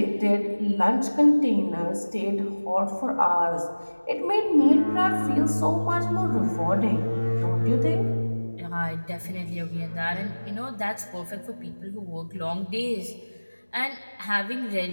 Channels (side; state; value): both; inverted; correlation -1.00